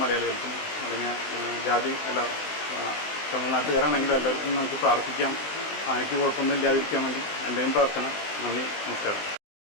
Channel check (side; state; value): right; late; 19 ms